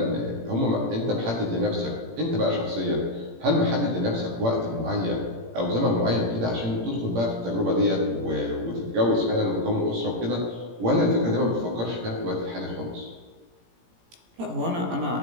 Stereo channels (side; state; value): left; late; 17 ms